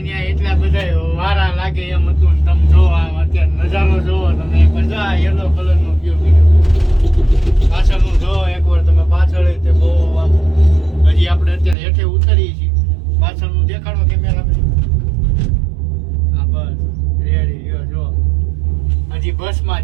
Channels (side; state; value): left; drops out; at 11.8 s